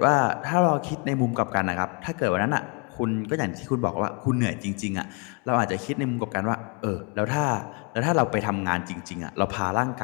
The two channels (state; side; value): quieter; right; 33.8 dB